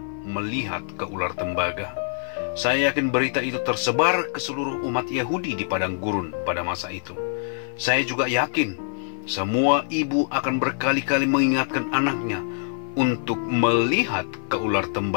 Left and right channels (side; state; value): right; silent; 56 dB below the other